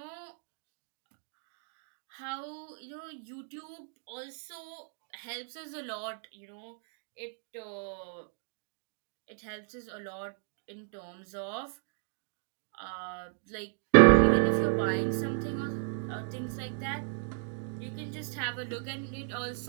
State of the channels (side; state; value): left; silent; 55 dB below the other